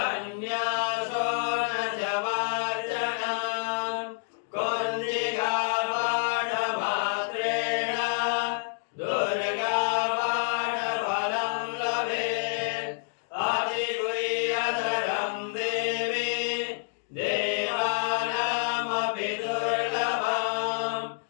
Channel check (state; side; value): silent; right; digital silence